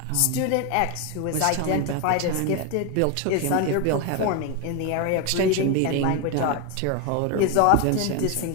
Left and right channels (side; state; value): both; different; correlation 0.01